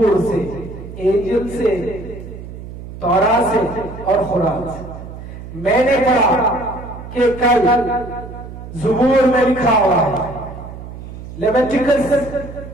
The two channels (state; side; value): noise; right; hum, 12 dB below the sound